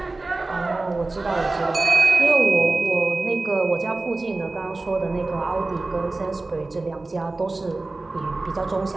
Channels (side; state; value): left; quieter; 3.2 dB